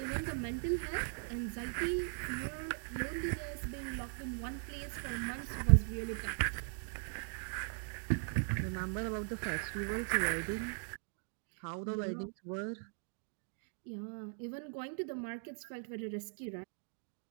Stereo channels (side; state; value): left; silent; 52 dB below the other